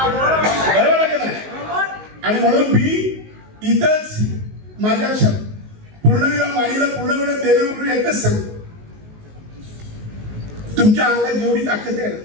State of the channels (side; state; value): left; late; 19 ms